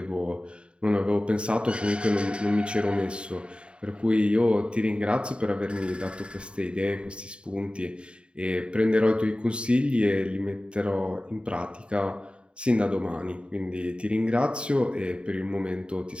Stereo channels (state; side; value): late; left; 0.054 ms